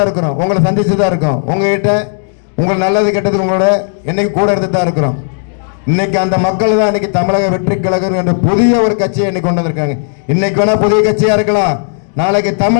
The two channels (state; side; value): silent; right; digital silence